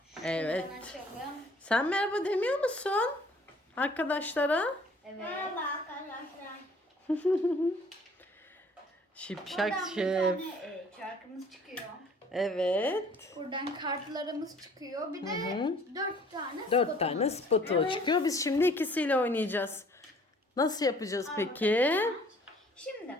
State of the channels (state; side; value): normal; both; correlation 0.55